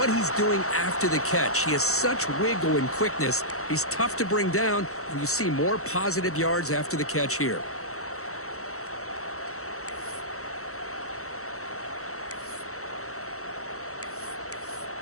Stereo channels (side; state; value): right; late; 0.64 ms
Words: he's doing after the catch. He has such wiggle and quickness. He's tough to bring down, and you see more positive yards after the catch here.